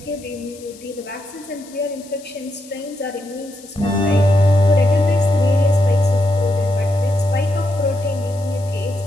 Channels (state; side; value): noise; left; hiss, 22 dB below the sound